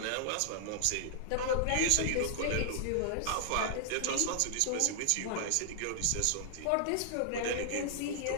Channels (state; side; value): different; both; correlation -0.01